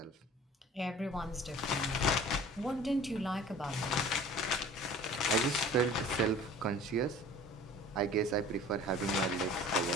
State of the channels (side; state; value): both; normal; correlation 0.45